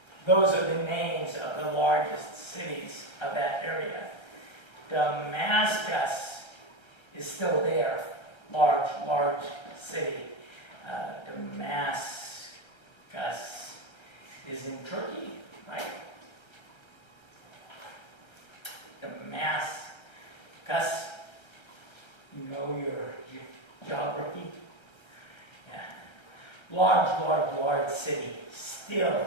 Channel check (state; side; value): late; right; 1.3 ms